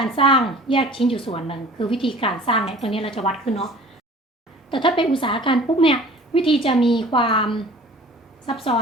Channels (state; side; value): normal; both; correlation 0.46